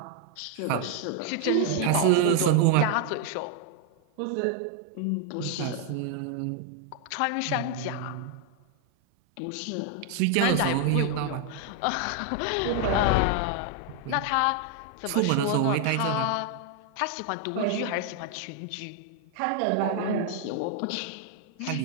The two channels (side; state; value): both; different; correlation 0.00